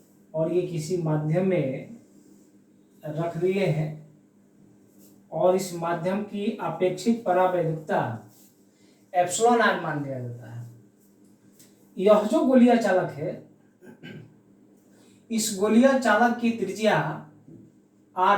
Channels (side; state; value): both; identical; correlation 1.00